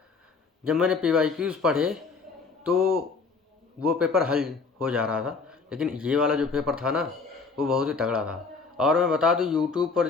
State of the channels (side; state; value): right; quieter; 4.7 dB